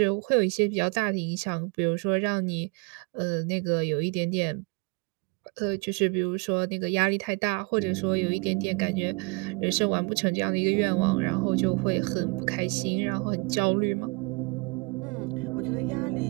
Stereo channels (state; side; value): quieter; left; 30.8 dB